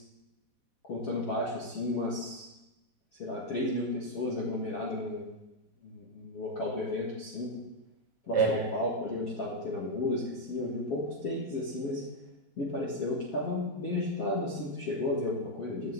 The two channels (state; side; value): late; right; 4.1 ms